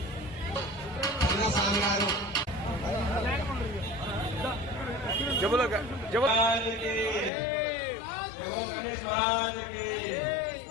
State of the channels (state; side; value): drops out; right; at 7.3 s